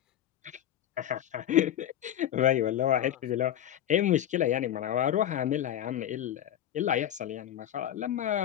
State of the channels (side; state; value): right; quieter; 11.3 dB